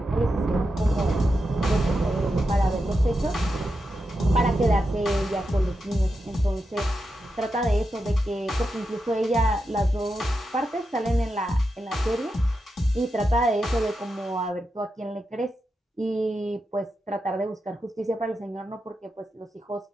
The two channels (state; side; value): normal; both; correlation 0.88